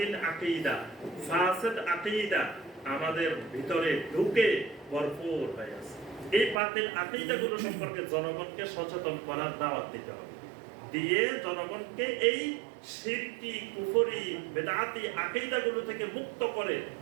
আকীদা, ফাসিদ আকীদা আমাদের ভিতরে ঢুকে ভরপুর হয়ে আছে। এই বাতিল আকীদাগুলো সম্পর্কে জনগণকে সচেতন করার দাওয়াত দিতে হবে, দিয়ে জনগণকে এই শিরকি, কুফরি, বেদাতি আকীদাগুলো থেকে মুক্ত করে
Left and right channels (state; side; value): drops out; left; at 6.6 s